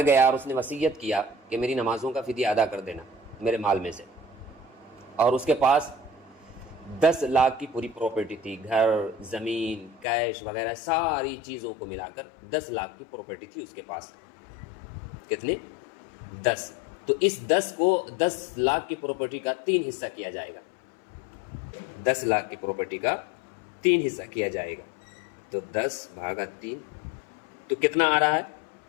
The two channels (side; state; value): right; drops out; at 10.1 s